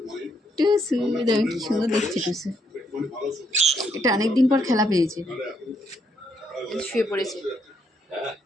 টুসু, দেখো কি সুন্দর দেখছে টুসু। এটা অনেকদিন পর খেলা পেয়েছে, শুয়ে পড়েছে।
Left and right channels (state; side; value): normal; both; correlation 0.75